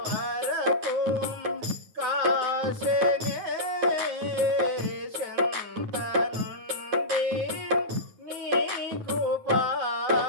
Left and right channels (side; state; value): left; late; 9.2 ms